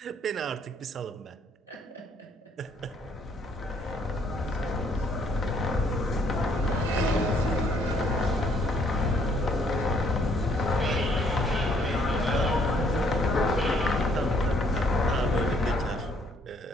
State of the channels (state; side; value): normal; both; correlation 0.65